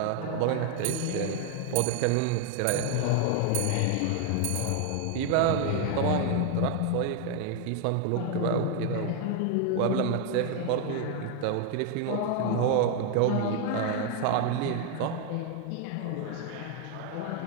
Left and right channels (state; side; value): different; both; correlation 0.01